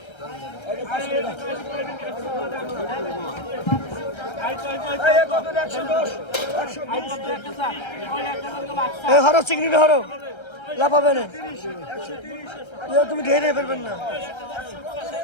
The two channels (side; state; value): right; late; 1.3 ms